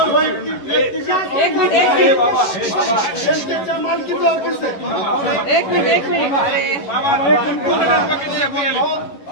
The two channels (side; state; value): right; late; 11 ms